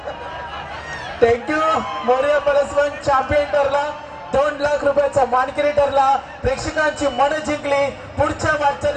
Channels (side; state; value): both; identical; correlation 1.00